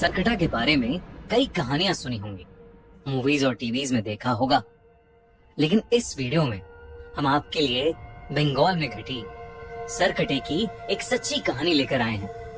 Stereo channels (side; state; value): both; identical; correlation 1.00